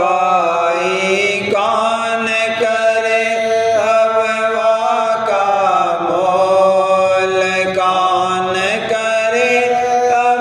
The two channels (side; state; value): both; identical; correlation 1.00